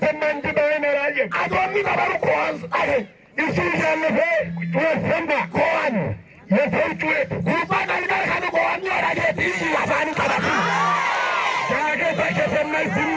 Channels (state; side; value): identical; both; correlation 1.00